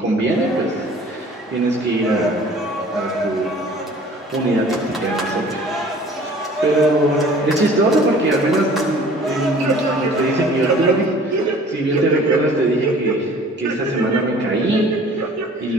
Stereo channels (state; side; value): normal; both; correlation 0.50